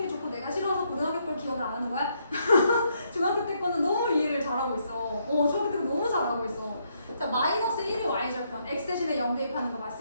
좋고 내가 싫어서 고등학교 걸 기억을 안 하는 거야? 중학교 때 거는 너무 이해를 잘하고 있어. 중학교 때 너무 잘하고 있어. 자, 마이너스 1이 y절편. x 대신에 0 대입하는 거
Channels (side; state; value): both; inverted; correlation -0.74